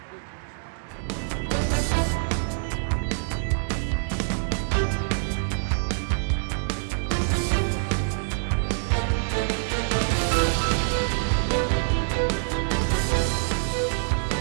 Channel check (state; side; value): silent; left; digital silence